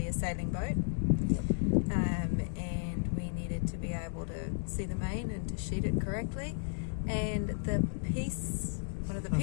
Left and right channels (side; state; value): right; silent; digital silence